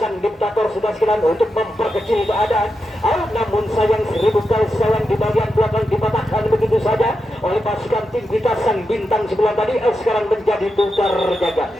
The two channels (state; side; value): normal; both; correlation 0.87